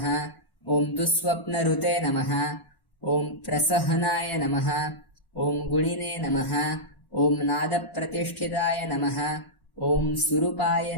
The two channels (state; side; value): late; right; 1.1 ms